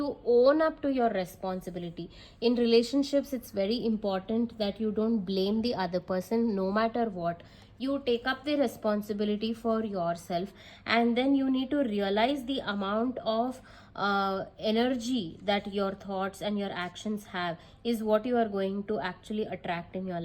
own up to your responsibility. In relationships, it's very important that you don't blame the other person no matter what. You take up the responsibility for yourself, and then you need to realize the amount of energy that your thoughts and your actions have is what you are going to actually attract in your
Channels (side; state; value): both; identical; correlation 1.00